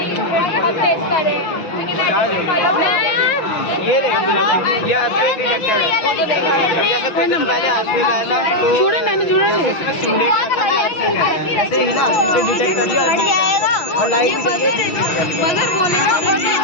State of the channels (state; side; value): late; right; 6.1 ms